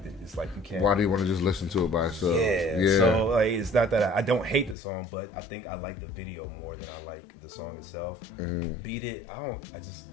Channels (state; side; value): drops out; right; at 4.8 s